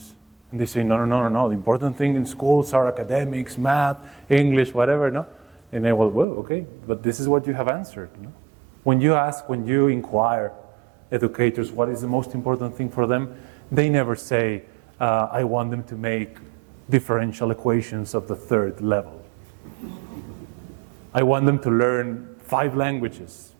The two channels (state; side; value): drops out; left; at 6.2 s